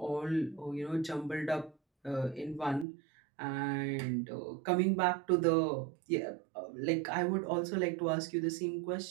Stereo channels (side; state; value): left; drops out; at 2.9 s